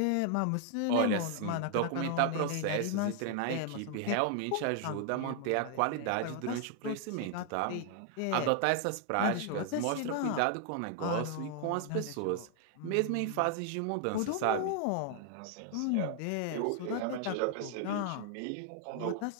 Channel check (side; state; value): both; different; correlation 0.00